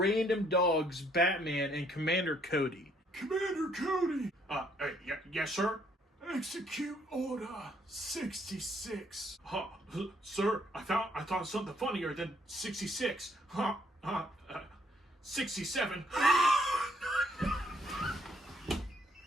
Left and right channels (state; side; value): normal; both; correlation 0.67